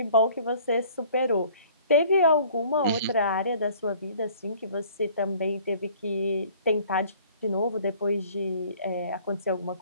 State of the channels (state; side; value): inverted; both; correlation -0.53